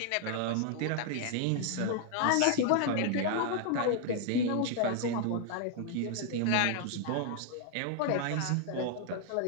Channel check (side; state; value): both; different; correlation 0.00